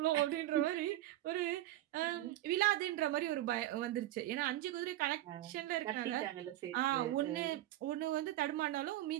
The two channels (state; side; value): quieter; left; 14.8 dB